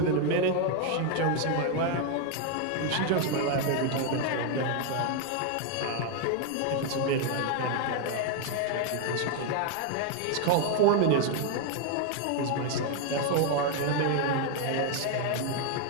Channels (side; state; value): both; different; correlation 0.01